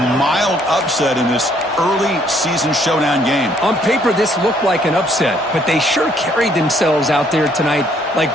mild upset in this early season showdown game. On paper, this looked like an upset, but they sure carried themselves out there tonight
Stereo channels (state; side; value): normal; both; correlation 0.66